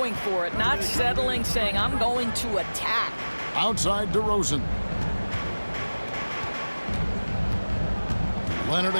for it, not settling, saying, I'm going to attack. Outside DeRozan. Leonard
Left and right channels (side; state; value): both; inverted; correlation -1.00